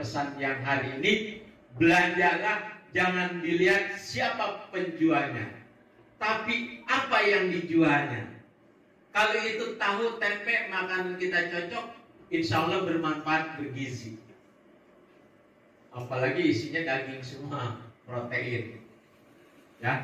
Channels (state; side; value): identical; both; correlation 1.00